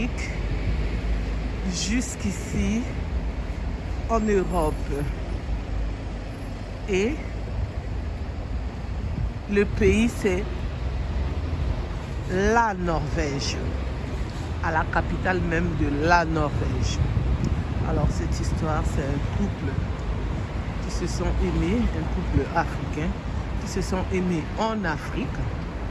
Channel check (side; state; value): both; identical; correlation 1.00